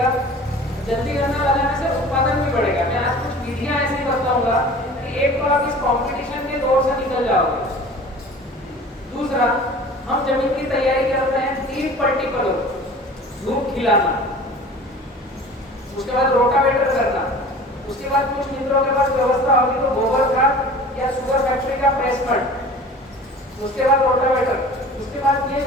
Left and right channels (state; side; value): normal; both; correlation 0.42